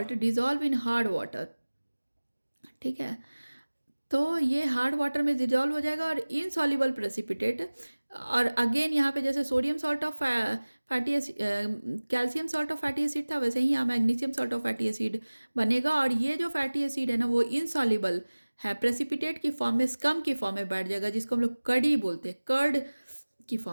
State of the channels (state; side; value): inverted; both; correlation -1.00